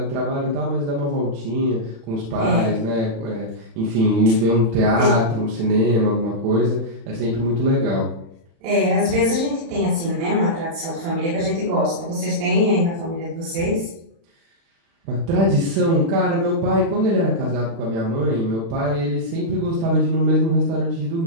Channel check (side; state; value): left; late; 36 ms